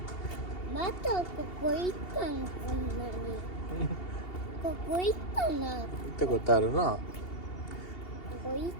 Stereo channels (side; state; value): right; late; 2.8 ms